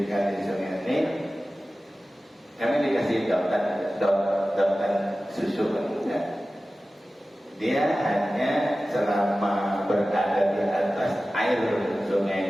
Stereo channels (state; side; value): normal; both; correlation 0.96